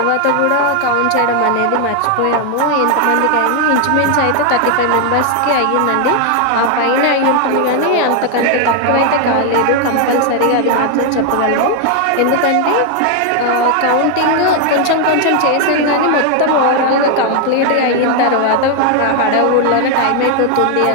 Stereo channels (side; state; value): both; different; correlation 0.00